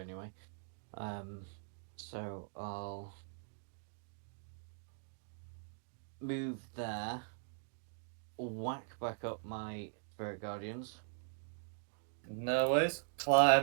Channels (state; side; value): silent; left; digital silence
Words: So I'll move there, whack back up my spirit guardians. No worries.